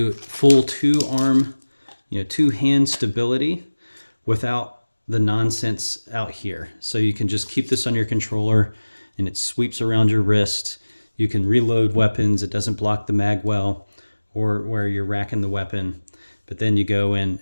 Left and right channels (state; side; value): inverted; both; correlation -1.00